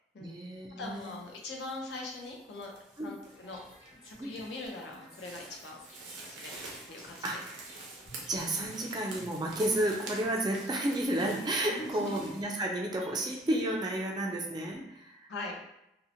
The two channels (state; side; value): normal; both; correlation 0.54